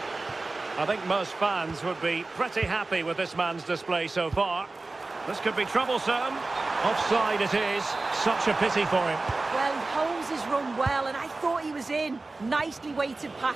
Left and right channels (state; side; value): quieter; left; 3.4 dB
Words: I think most fans would be pretty happy with this man's display so far. This could be troublesome. Offside it is. Such a pity for him. Well, he holds his run well, and I thought he was in. Nicely weighted